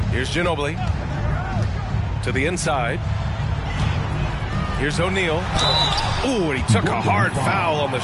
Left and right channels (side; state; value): both; identical; correlation 1.00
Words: Here's Ginobili. To the inside. Here's O'Neal. Ooh, and he took a hard foul on the